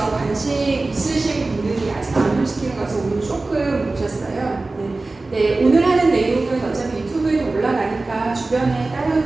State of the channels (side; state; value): left; quieter; 3.3 dB